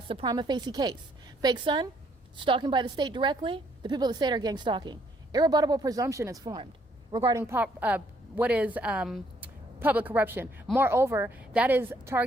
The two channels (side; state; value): both; normal; correlation 0.68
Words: the prima facie case. Fake son, stalking by the state directly, the people of the state are gang stalking. Irrebuttable presumption is formed regarding what is public corruption. Moreover, that is